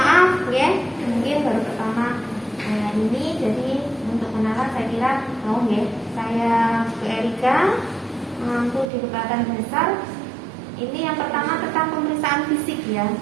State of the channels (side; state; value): left; drops out; at 8.8 s